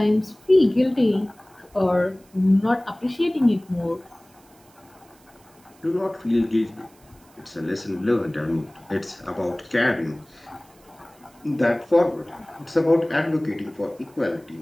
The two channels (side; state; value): right; noise; hiss, 30 dB below the sound